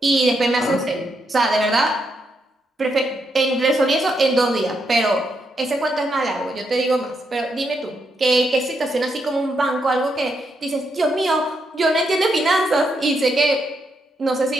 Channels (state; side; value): normal; both; correlation 0.80